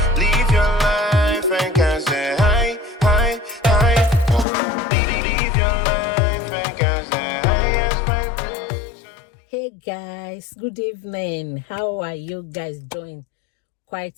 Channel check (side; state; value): right; drops out; at 4.5 s